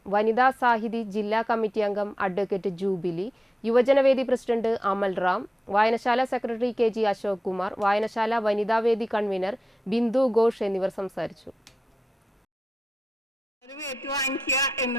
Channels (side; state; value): both; normal; correlation 0.91